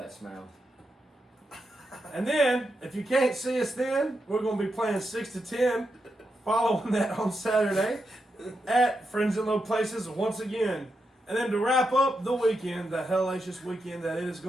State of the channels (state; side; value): normal; both; correlation 0.85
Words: smell. And then, if you can't see us then, we're going to be playing 6 to 10. Following that on Saturday at Friends in Low Places once again. And then to wrap up the weekend, the hellacious weekend that it is